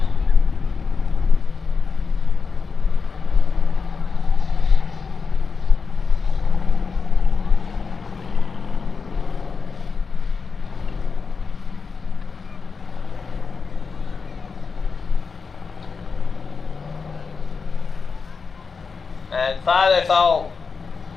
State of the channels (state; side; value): quieter; right; 5.1 dB